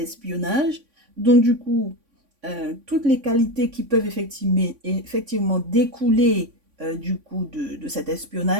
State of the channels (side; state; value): left; late; 3.5 ms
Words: donc du coup, toutes les qualités qui peuvent effectivement découler du coup de cet